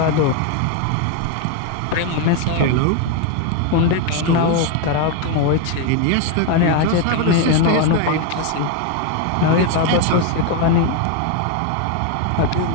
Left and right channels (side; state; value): both; different; correlation 0.02